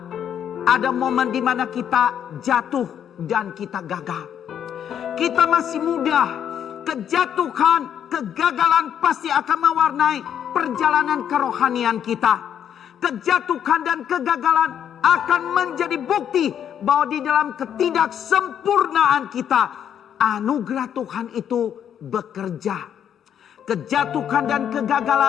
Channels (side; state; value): right; quieter; 9.2 dB